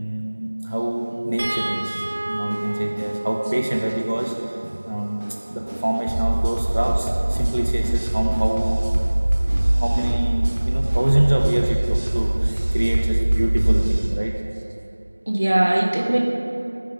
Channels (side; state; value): both; inverted; correlation -1.00